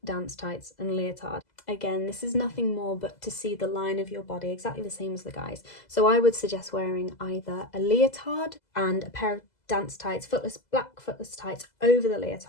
dance tights and leotard. Again, this is nothing more but to see the line of your body, exactly the same as the guys. So I would suggest wearing either a leotard and a pair of dance tights, black footless tights over the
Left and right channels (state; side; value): late; right; 2.0 ms